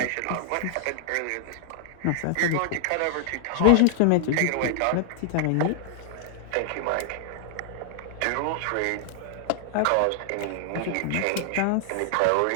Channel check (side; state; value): both; different; correlation 0.00